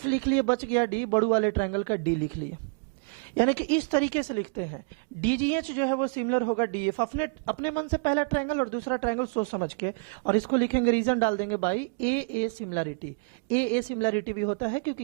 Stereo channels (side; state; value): left; quieter; 36.4 dB